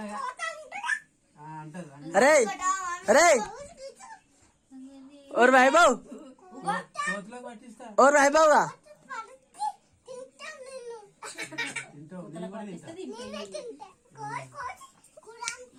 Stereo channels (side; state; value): both; identical; correlation 1.00